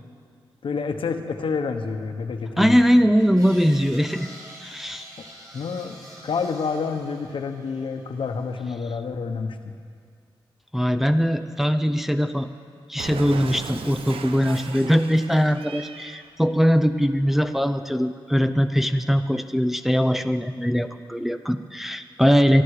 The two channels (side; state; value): both; normal; correlation 0.96